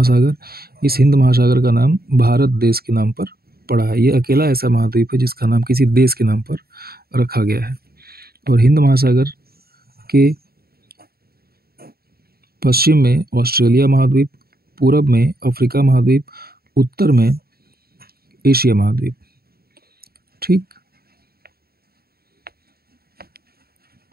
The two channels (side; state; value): left; late; 0.45 ms